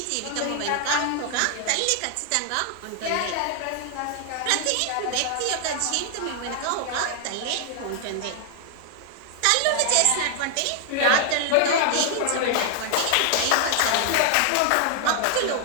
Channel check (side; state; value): both; different; correlation 0.00